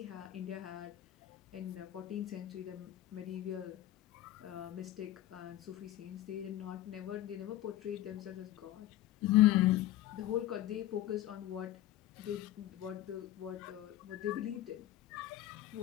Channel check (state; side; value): quieter; right; 14.1 dB